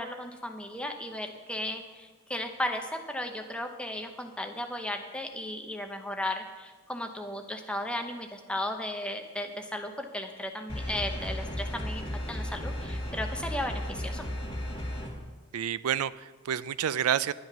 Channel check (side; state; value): both; normal; correlation 0.45